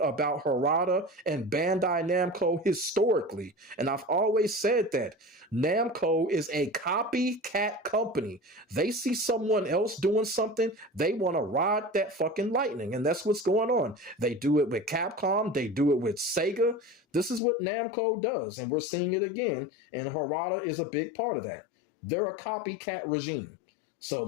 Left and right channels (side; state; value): right; drops out; at 17.4 s